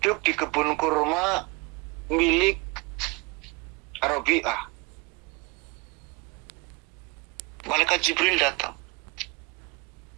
di kebun kurma milik Rabi'ah. Malaikat Jibril datang.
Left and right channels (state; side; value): quieter; left; 26.8 dB